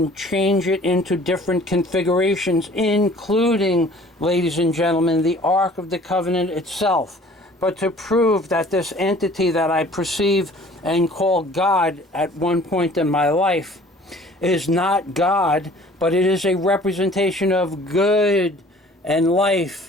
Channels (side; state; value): both; normal; correlation 0.51